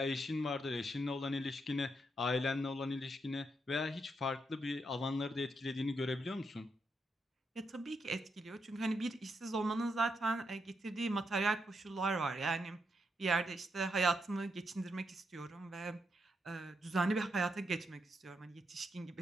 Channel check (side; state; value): both; normal; correlation 0.81